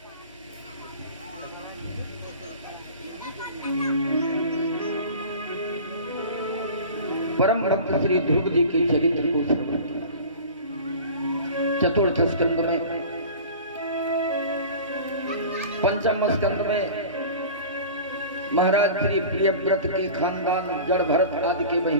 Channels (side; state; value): both; inverted; correlation -0.38